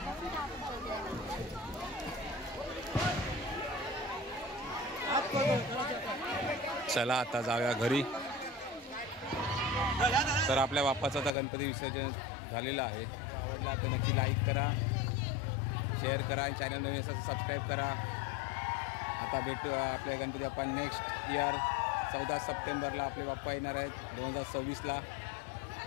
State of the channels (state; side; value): drops out; right; at 11.4 s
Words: चला आता जाऊया घरी. तर आपल्या बाप्पाचं आता गणपती विसर्जन झालेलं आहे. आवडला तर नक्की लाईक करा, शेअर करा आणि चॅनल नवीन असेल सबस्क्राईब करा. आता भेटू आपल्या गणपती बाप्पा नेक्स्ट इयर 14 सप्टेंबरला आपले बाप्पा येणार आहेत 2026ला.